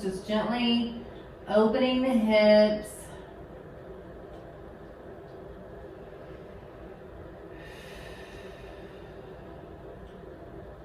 just gently opening the hips.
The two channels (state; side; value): identical; both; correlation 1.00